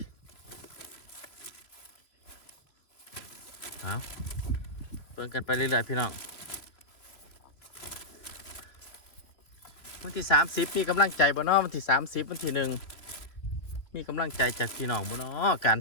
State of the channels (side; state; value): right; late; 3.2 ms